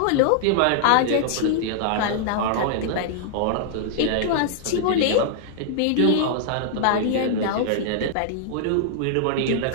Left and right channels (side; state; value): both; different; correlation -0.01